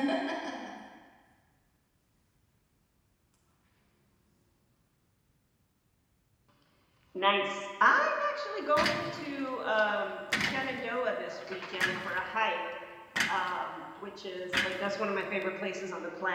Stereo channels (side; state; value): both; identical; correlation 1.00